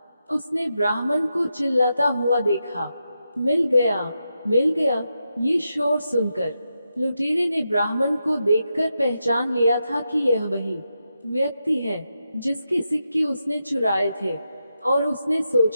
उसने ब्राह्मण को चिल्लाता हुआ देखा, मिल गया, मिल गया। ये शोर सुनकर लुटेरे ने ब्राह्मण को देखकर पहचान लिया था कि यह वही व्यक्ति है जिसके सिक्के उसने चुराए थे, और उसने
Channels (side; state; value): both; inverted; correlation -0.86